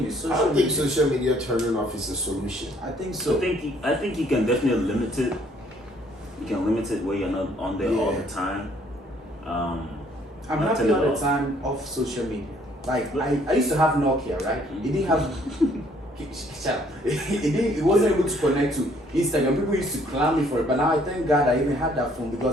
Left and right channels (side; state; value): both; normal; correlation 0.63